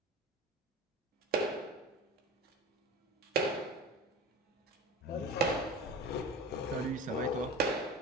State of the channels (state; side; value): normal; both; correlation 0.32